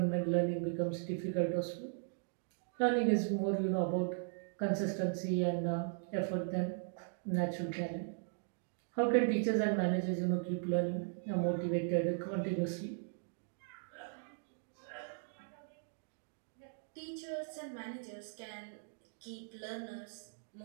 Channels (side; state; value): left; silent; digital silence